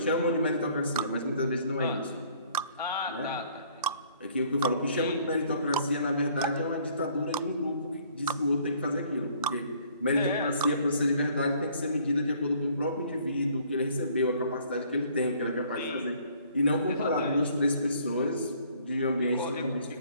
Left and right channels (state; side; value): inverted; both; correlation -0.60